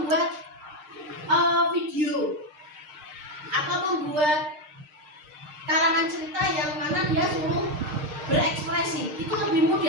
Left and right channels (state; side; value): late; left; 6.6 ms